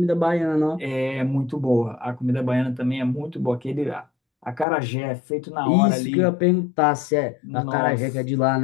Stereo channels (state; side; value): drops out; right; at 4.7 s